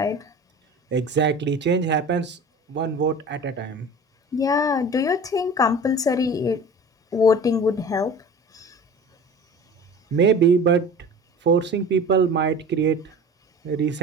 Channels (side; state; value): both; normal; correlation 0.39